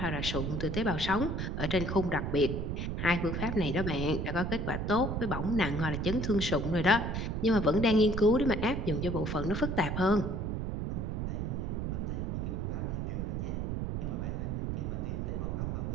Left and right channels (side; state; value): right; noise; rumble, 2 dB below the sound